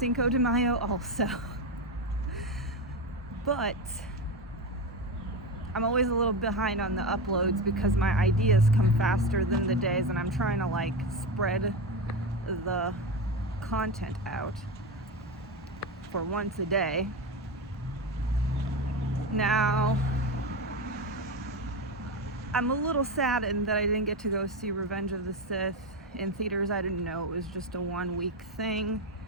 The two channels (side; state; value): both; normal; correlation 0.17